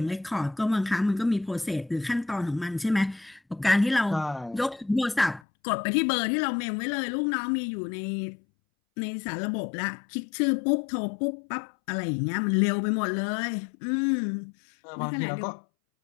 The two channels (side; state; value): right; drops out; at 5.4 s